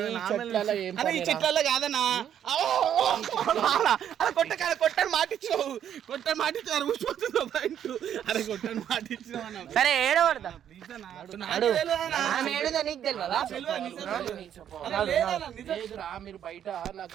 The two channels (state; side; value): quieter; left; 9.7 dB